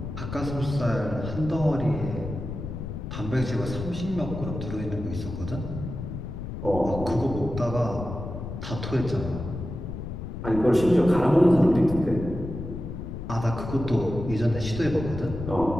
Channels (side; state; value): left; noise; rumble, 7 dB below the sound